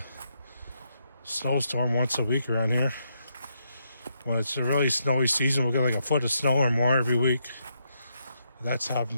snowstorm once a week around here. When it's a really snowy season, we'll get like a foot of snow or more every week. That's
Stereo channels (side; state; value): both; inverted; correlation -0.79